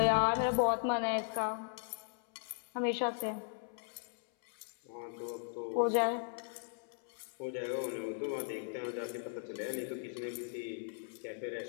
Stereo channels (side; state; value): right; silent; 53 dB below the other